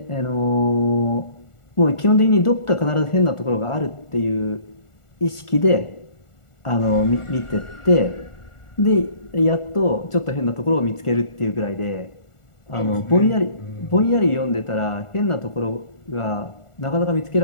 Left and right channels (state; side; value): late; right; 1.4 ms